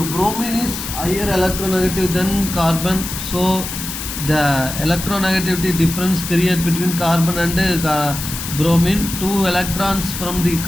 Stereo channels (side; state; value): left; noise; hiss, 7 dB below the sound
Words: bromine is higher electronegative than carbon, so the electronegativity difference created between carbon and bromine. 2 electrons from the